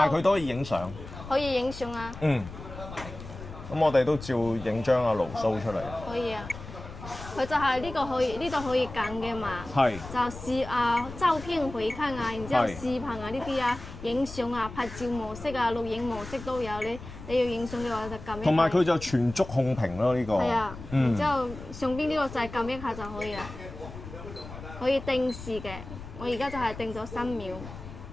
佢都可以影相。可以影相啊。咁我哋都照影張阿盧蘇出嚟。可以啊。佢就係呢個可以，呢度可以揀嘅嘛。係。就是照片回看啊，然之後視頻啊呢啲啊，影相啊、拍照模式啊、錄影模式都有。你要影相嘅話就撳一下。同埋佢就全觸控屏咯呢個。係啊。然之後上邊呢個就係撳一下就可以啦。可以定時嘅，我而家就係定咗3秒。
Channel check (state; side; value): noise; left; rumble, 13 dB below the sound